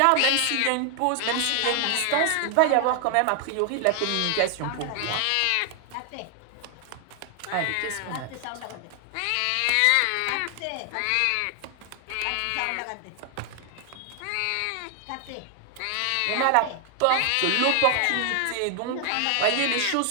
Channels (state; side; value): different; both; correlation 0.00